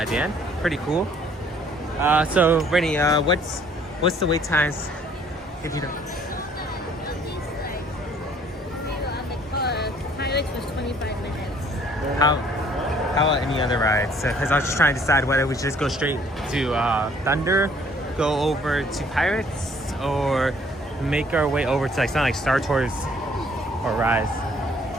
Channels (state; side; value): normal; both; correlation 0.60